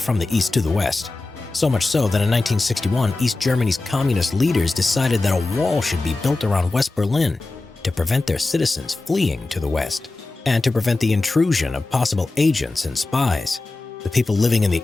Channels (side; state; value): right; quieter; 3.2 dB